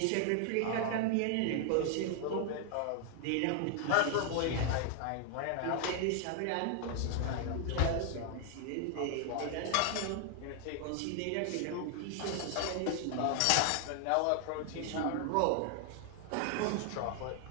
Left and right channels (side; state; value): both; different; correlation 0.00